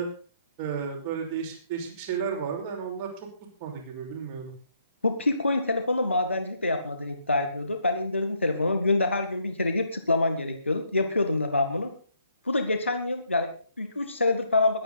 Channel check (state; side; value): inverted; both; correlation -0.73